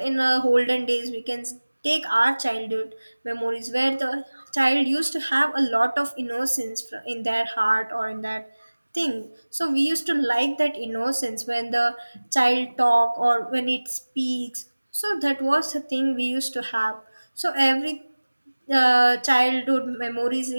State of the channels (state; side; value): inverted; both; correlation -1.00